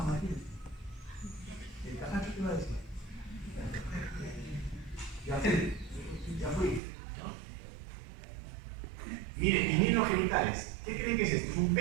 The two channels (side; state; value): left; drops out; at 6.8 s